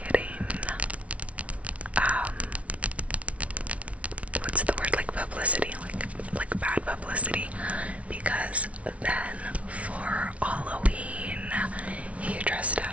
what's the word, like publicity, like bad publicity, because then for Halloween he dressed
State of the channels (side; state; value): left; late; 0.064 ms